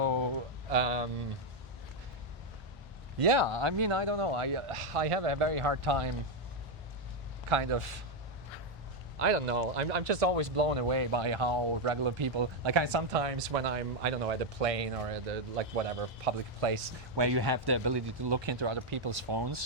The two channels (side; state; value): both; normal; correlation 0.03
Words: yeah, I mean, I don't know. I have a very hard time, kind of. I don't know. I'm just always blown away by how regular people, like I sometimes when I'm, I don't know, at a plane or at a, like whatever public place where you have the ability to look into other people's